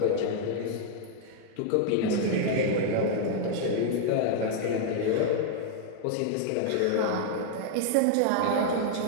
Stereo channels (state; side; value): different; both; correlation -0.01